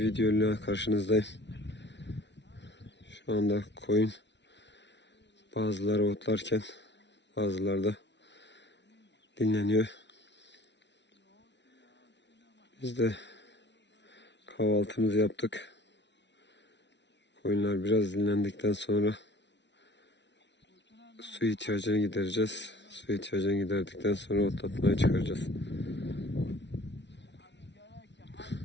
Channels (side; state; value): right; late; 0.51 ms